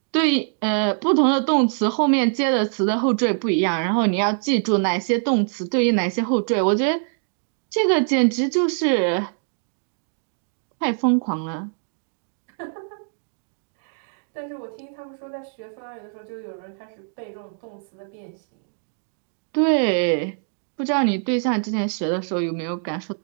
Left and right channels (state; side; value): silent; left; digital silence